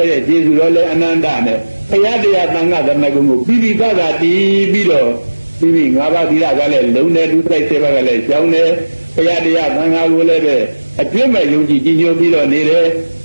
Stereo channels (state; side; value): inverted; both; correlation -1.00